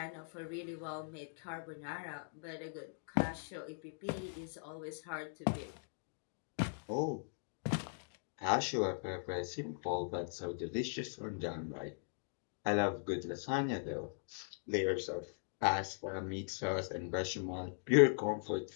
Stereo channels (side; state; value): right; silent; digital silence